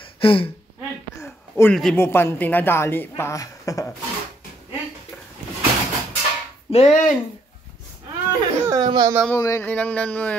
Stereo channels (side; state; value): both; normal; correlation 0.71